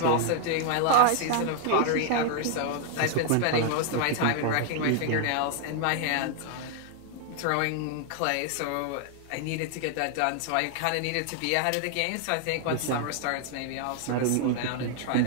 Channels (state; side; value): different; both; correlation 0.00